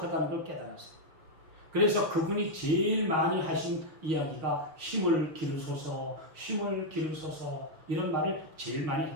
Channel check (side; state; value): left; late; 6.4 ms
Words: 걸 깨달았어요. 그래서 그분이 제일 많이 하신 이야기가 힘을 기르소서, 힘을 기르소서 이런 말을 제일 많이